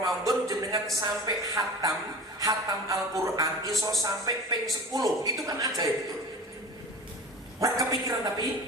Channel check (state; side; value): normal; both; correlation 0.35